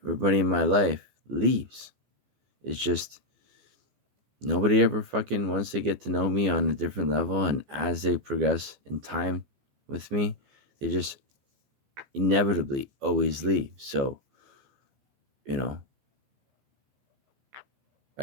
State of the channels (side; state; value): left; late; 15 ms